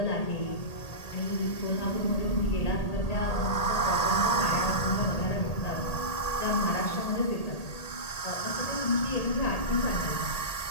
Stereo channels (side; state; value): right; late; 1.8 ms